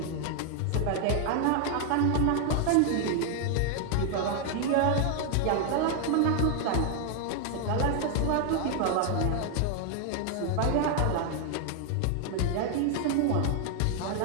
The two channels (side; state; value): both; different; correlation 0.00